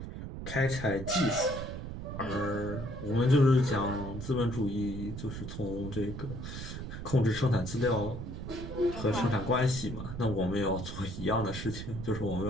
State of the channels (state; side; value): noise; right; rumble, 7 dB below the sound